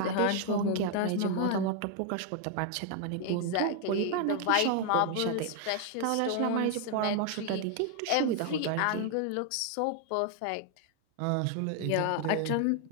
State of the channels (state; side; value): different; both; correlation 0.00